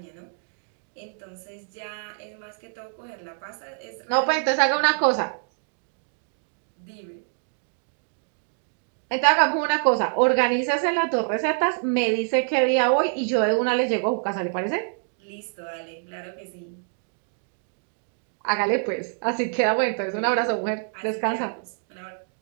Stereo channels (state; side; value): silent; left; 61 dB below the other